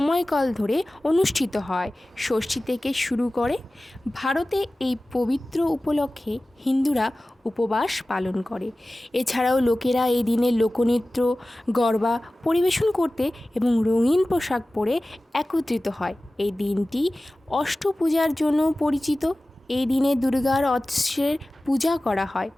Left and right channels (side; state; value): both; normal; correlation 0.97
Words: ধরে অনুষ্ঠিত হয়। ষষ্ঠী থেকে শুরু করে ভারতে এই পবিত্র উপলক্ষে হিন্দুরা উপবাস পালন করে। এছাড়াও লোকেরা এই দিনে লোকনৃত্য, গরবা পরিবেশন করতে এবং রঙিন পোশাক পরে একত্রিত হয়। এই দিনটি অষ্টপূজার জন্য পরিচিত। এই দিনে দুর্গার অস্ত্রের পূজা করা হয়।